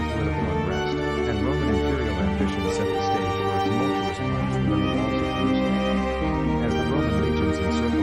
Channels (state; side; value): identical; both; correlation 1.00